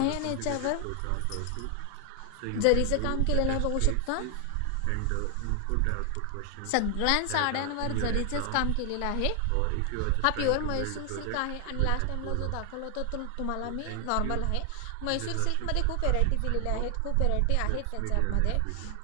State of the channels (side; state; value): both; different; correlation 0.00